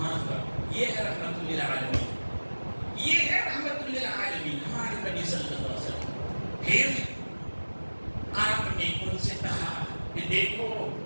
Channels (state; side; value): inverted; both; correlation -1.00